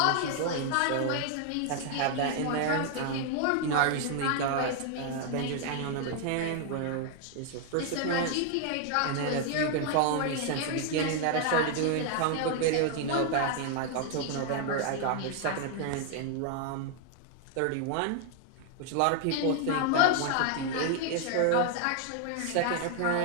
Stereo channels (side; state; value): both; different; correlation 0.00